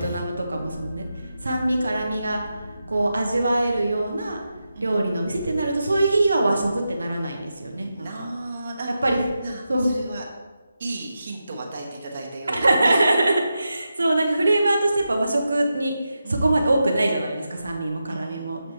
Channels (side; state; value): both; inverted; correlation -0.89